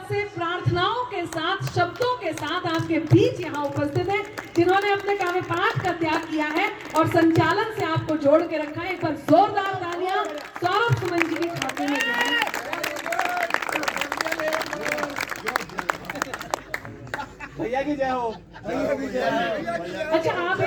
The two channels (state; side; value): identical; both; correlation 1.00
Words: से प्रार्थनाओं के साथ, शब्दों के साथ आपके बीच यहाँ उपस्थित है, जिन्होंने अपने काव्य पाठ का त्याग किया है और संचालन से आपको जोड़ के रखा है। एक बार जोरदार तालियां सौरभ सुमन जी के खाते में जाए। भैया की जय हो। अच्छा, आप